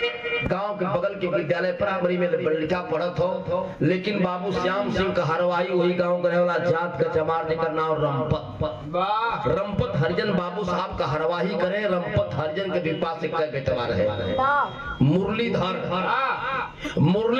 गांव के बगल के विद्यालय प्राइमरी में लड़का पढ़त हो, लेकिन बाबू श्याम सिंह का हरवाई वही गांव का वाला जात का चमार जेकर नाम रंपत हरिजन बाबू साहब का हरवाही करे। रंपत हरिजन के विपा से कई बेटवा रहे। मुरलीधर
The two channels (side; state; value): both; identical; correlation 1.00